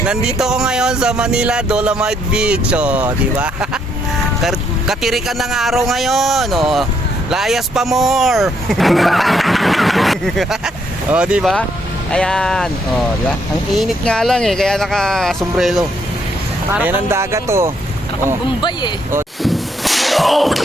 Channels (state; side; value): normal; both; correlation 0.72